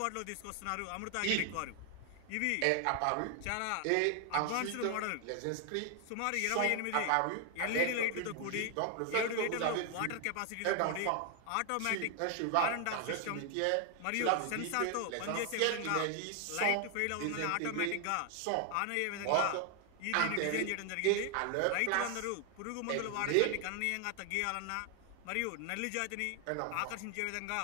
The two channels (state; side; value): different; both; correlation 0.00